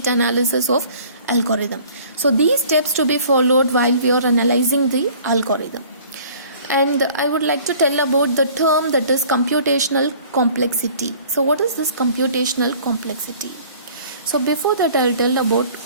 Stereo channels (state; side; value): inverted; both; correlation -0.51